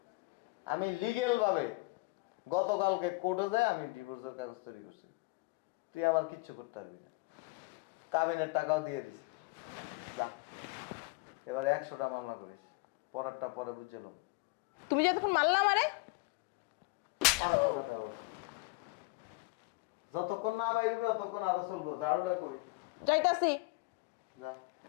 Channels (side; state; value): right; quieter; 25.6 dB